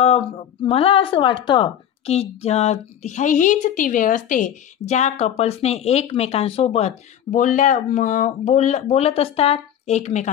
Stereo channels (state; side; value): quieter; right; 9.9 dB